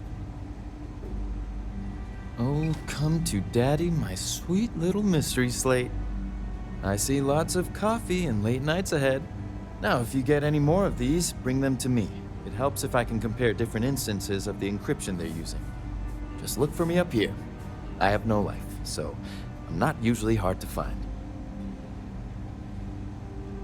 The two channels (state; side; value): identical; both; correlation 1.00